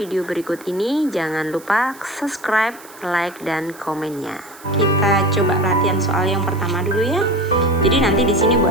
berikut ini. Jangan lupa subscribe, like, dan komennya. Kita coba latihan soal yang pertama dulu ya. Jadi nanti di sini Bu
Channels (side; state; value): right; noise; hiss, 21 dB below the sound